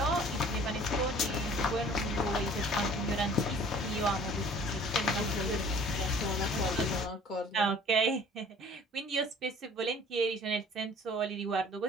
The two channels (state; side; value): normal; both; correlation 0.51